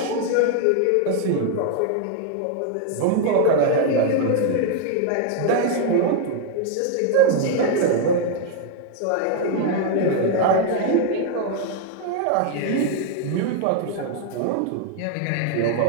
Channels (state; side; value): different; both; correlation 0.00